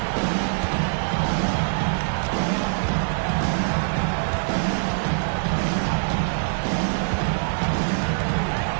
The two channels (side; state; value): left; silent; 63 dB below the other